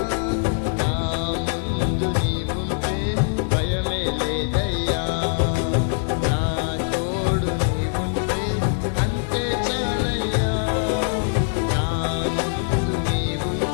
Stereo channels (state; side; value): silent; right; digital silence